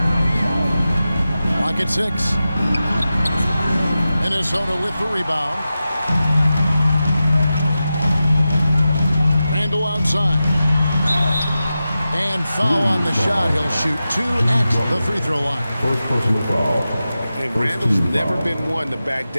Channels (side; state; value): both; inverted; correlation -0.93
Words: Clock at 6. Minnesota with the rebound. Randall outside. And foul on the shot. He'll shoot 2 at the free throw line. First personal foul. And Randall's never been one to back